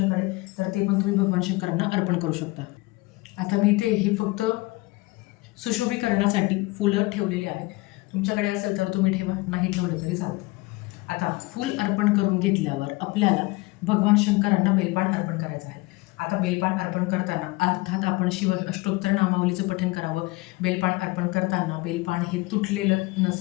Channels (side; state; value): right; quieter; 22.4 dB